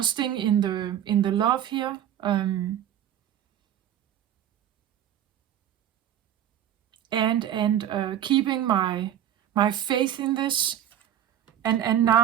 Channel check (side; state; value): left; quieter; 10.8 dB